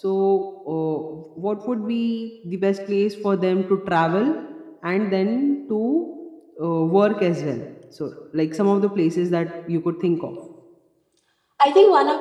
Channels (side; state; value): both; identical; correlation 1.00